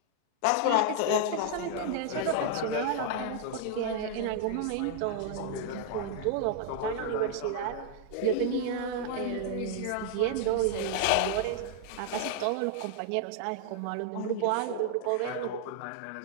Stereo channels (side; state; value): both; different; correlation -0.01